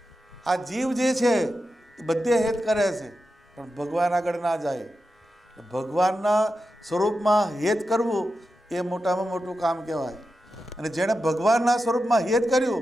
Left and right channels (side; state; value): both; normal; correlation 0.90